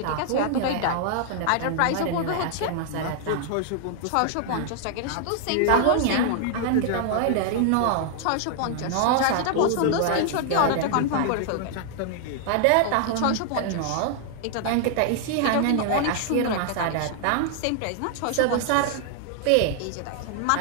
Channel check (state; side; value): different; both; correlation 0.00